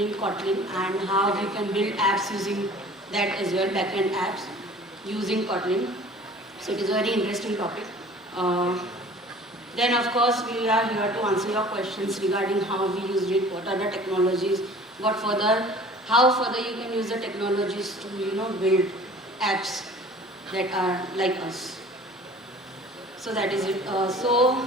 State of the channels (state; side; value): normal; both; correlation 0.46